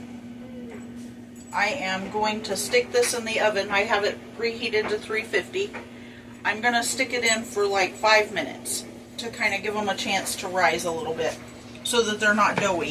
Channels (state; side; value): identical; both; correlation 1.00